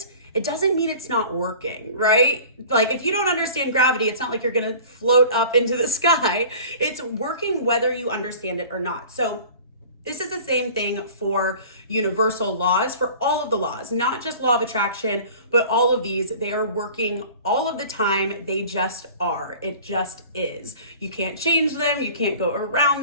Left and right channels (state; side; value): inverted; both; correlation -0.43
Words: it doesn't mean it's not working, right? Like if you don't understand gravity, it's not like you're gonna float up into the sky. It's working whether you understand it or not. So this is the same thing for universal laws, for all of the laws, not just law of attraction, but all of these. They are working all of the time. They just are. It just is. You can't change them. You can't go